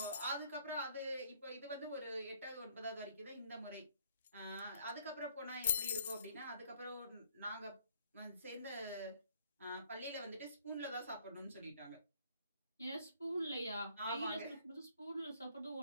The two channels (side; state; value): both; inverted; correlation -0.62